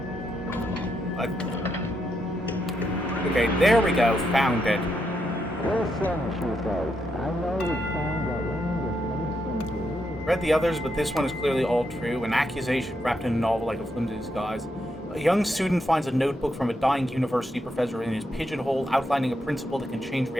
Okay, there we go. Found it. Read the others, but this one is clearly all true. An accusation wrapped in a novel like a flimsy disguise. A young student finds a notebook from a dying university professor in his pigeonhole, outlining a principle that can change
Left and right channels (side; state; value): both; normal; correlation 0.81